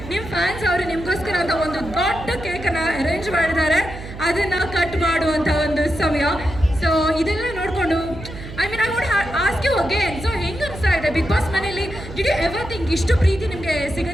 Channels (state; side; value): noise; right; hum, 12 dB below the sound